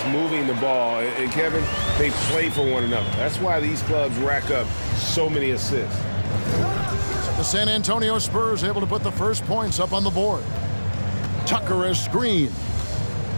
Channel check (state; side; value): inverted; both; correlation -1.00